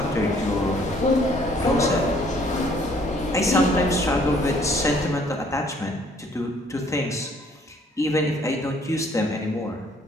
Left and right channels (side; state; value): both; normal; correlation 0.61